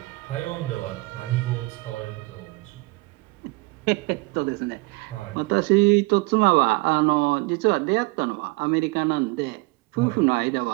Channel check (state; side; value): quieter; left; 24.8 dB